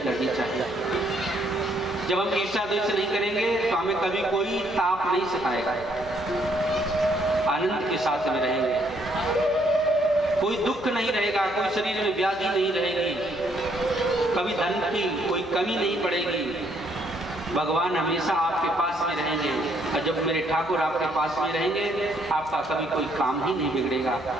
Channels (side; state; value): right; noise; hum, 21 dB below the sound